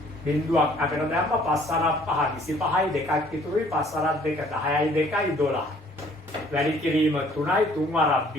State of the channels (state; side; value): normal; both; correlation 0.58